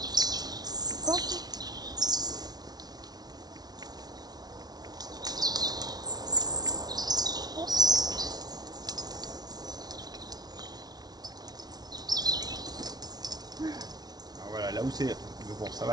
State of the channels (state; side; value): late; left; 0.19 ms